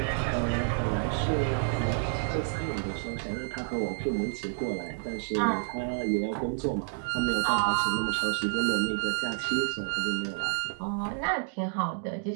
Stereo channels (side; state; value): left; silent; digital silence